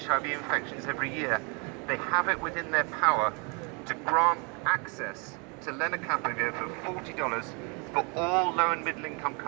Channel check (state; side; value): quieter; left; 32.7 dB